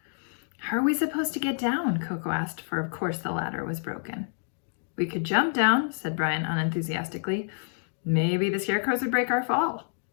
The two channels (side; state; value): right; silent; digital silence